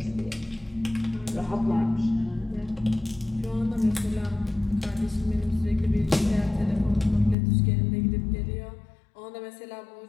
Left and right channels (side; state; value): right; drops out; at 7.4 s